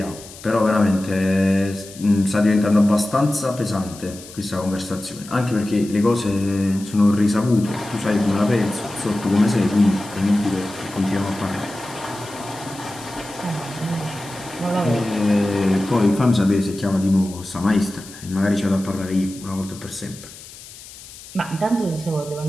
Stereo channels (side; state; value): left; noise; hiss, 17 dB below the sound